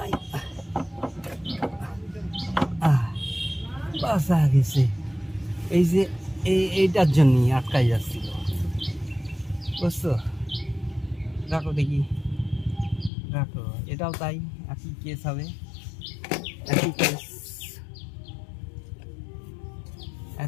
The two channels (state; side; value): drops out; right; at 13.1 s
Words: বাসা গেছে। এই যে এইটার জন্যই আটকাই যাচ্ছিল, বুঝছো? রাখো দেখি, রাখো, এটাও তাই, একই কেস হবে, একই কেস,